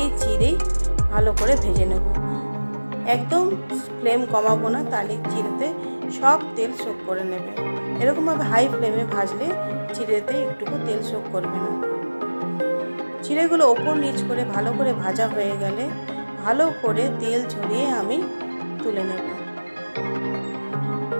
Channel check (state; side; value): inverted; both; correlation -1.00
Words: চিড়েই ভালো করে ভেজে নেব। একদম ফ্লেম কমাবো না, তাহলে চিড়েতে সব তেল শোক করে নেবে। এরকমভাবে হাই ফ্লেমে ভাজলে চিড়েতে একটুকু তেল শোক করবে না। চিড়েগুলো ওপর নিচ করে ভালো করে ভাজা হয়ে গেলে ভালো করে তেল ঝরিয়ে আমি তুলে নেব।